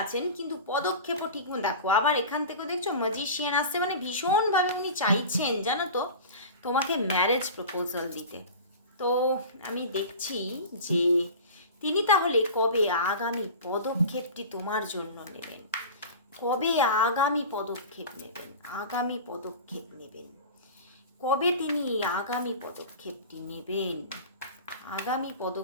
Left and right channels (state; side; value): inverted; both; correlation -0.34